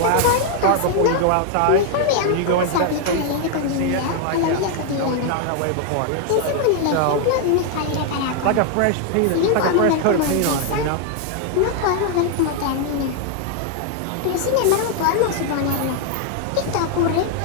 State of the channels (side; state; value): both; different; correlation 0.00